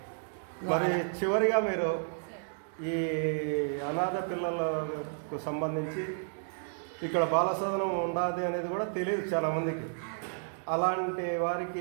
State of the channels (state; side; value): silent; left; digital silence